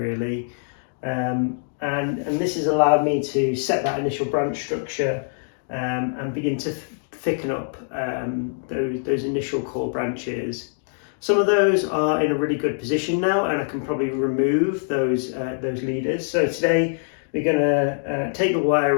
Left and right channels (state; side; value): silent; right; digital silence